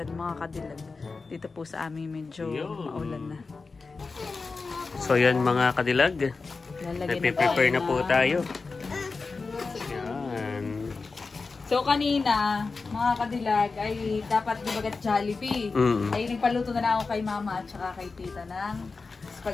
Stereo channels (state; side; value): quieter; right; 4.2 dB